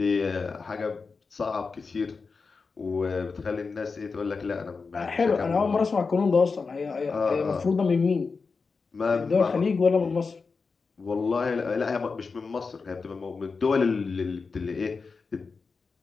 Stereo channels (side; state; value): right; quieter; 4.7 dB